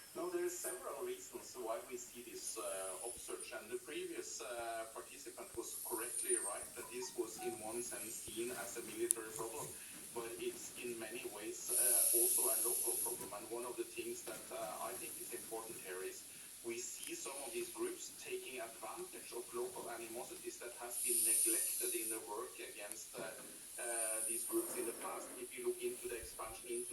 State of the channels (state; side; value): identical; both; correlation 1.00